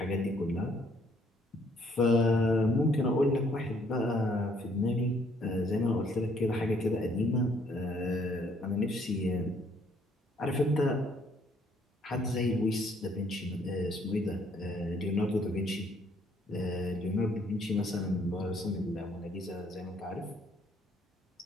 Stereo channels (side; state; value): both; normal; correlation 0.65